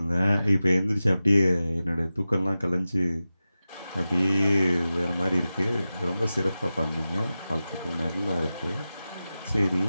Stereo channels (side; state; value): both; inverted; correlation -0.94